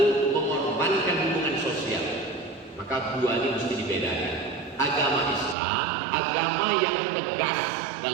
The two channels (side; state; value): left; drops out; at 5.6 s